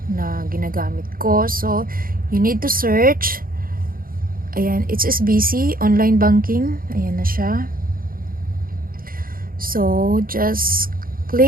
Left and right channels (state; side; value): late; left; 0.42 ms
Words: na ginagamit ko. So you need to search. Ayan, HSBC online banking. Ayan na siya. So just